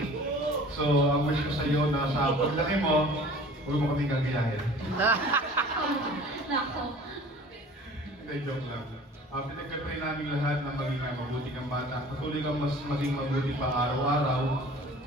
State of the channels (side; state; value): both; normal; correlation 0.46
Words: So, ang wish ko sa iyo na sa paglaki mo, huwag mo kaming gagayahin. Nako. Hindi, joke lang. Pinagkatry namin lahat na maging mabuti kang bata. Patuloy kang mas maging mabuti pa araw-araw.